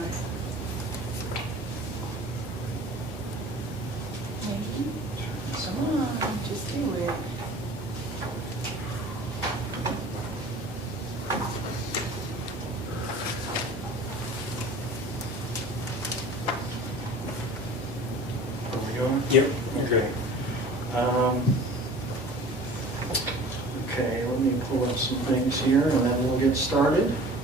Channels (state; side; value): normal; both; correlation 0.43